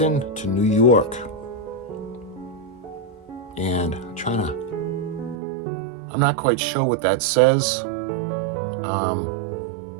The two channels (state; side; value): drops out; left; at 5.4 s